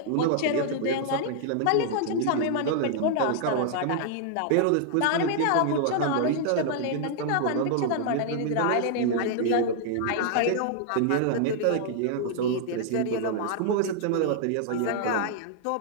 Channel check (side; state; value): both; different; correlation -0.01